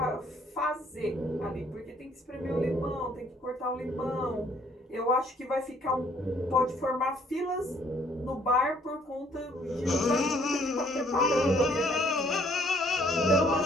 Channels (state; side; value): normal; both; correlation 0.62